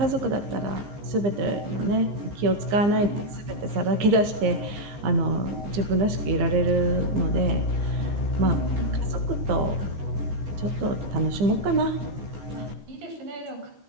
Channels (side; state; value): left; late; 15 ms